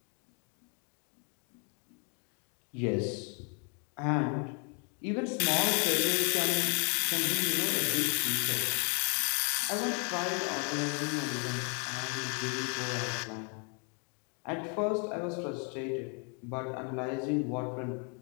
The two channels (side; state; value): right; quieter; 38.2 dB